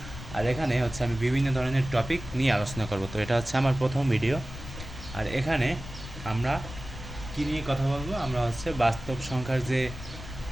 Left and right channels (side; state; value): left; noise; rumble, 11 dB below the sound